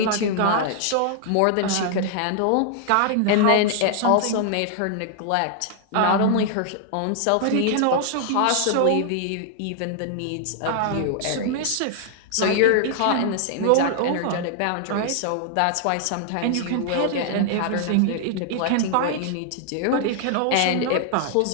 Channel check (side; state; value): both; different; correlation 0.00